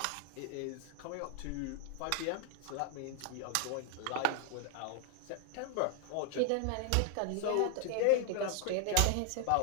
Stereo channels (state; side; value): different; both; correlation 0.00